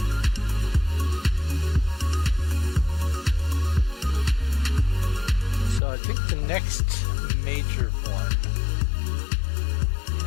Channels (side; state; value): right; drops out; at 5.8 s